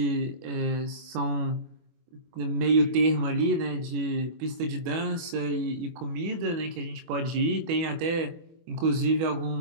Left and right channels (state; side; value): late; left; 24 ms